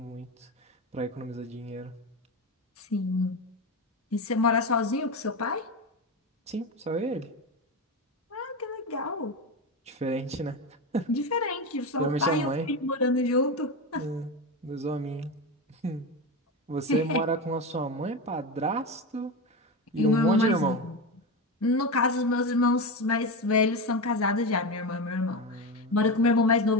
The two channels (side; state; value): both; normal; correlation 0.18